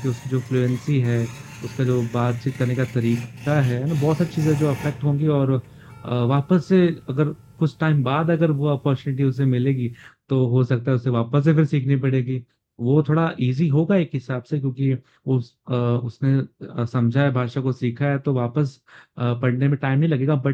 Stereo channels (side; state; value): both; identical; correlation 1.00